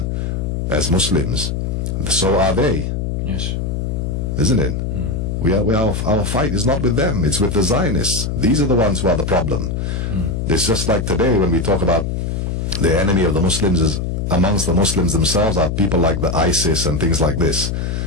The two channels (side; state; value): left; noise; hum, 2 dB below the sound